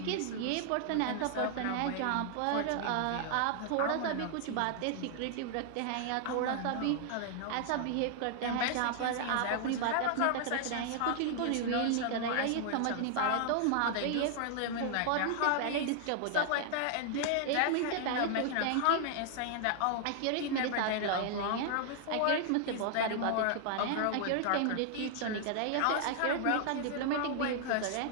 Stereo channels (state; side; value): different; both; correlation 0.00